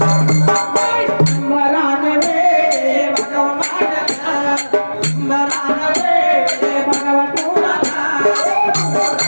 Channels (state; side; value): inverted; both; correlation -1.00